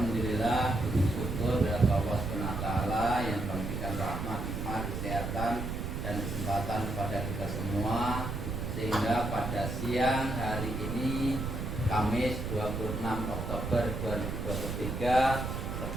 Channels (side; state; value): right; noise; rumble, 4 dB below the sound